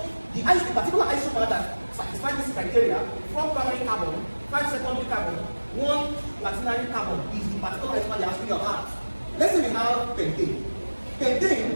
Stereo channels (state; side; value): inverted; both; correlation -1.00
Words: the particular isomer that satisfies this criteria, 4 primary carbon, 5 secondary carbon, 1 quaternary carbon is the particular isomer you're asking about. Let's say we have pentane.